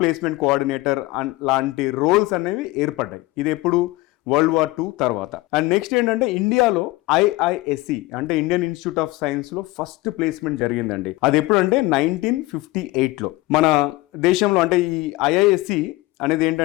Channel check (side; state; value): right; quieter; 20.1 dB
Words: కోఆర్డినేటర్ లాంటి రోల్స్ అనేవి ఏర్పడ్డాయి. ఇది ఎప్పుడు వరల్డ్ వార్ 2 తర్వాత. అండ్ నెక్స్ట్ ఏంటంటే ఇండియాలో IISc అంటే ఇండియన్ ఇన్స్టిట్యూట్ ఆఫ్ సైన్స్ లో ఫస్ట్ ప్లేస్మెంట్ జరిగిందండి. అది ఎప్పుడంటే 1958లో మన దేశంలో. అంటే ఈ IISc అనేది